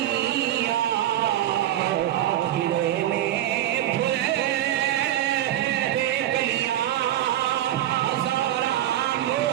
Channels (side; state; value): left; quieter; 12.6 dB